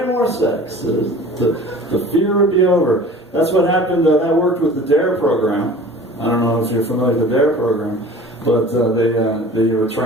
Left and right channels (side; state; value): both; normal; correlation 0.43